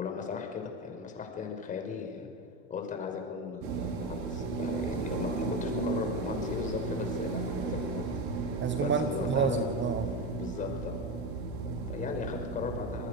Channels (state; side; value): normal; both; correlation 0.17